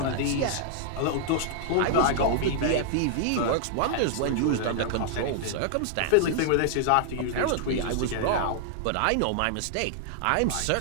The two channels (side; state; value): both; different; correlation -0.01